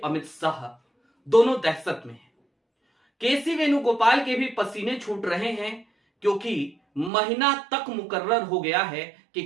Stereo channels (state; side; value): drops out; left; at 7.1 s